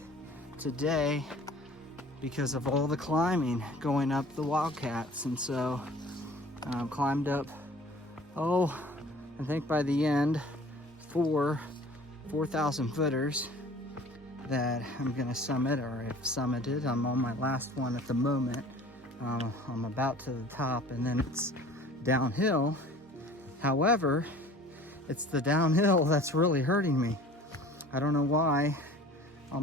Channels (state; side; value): normal; both; correlation 0.47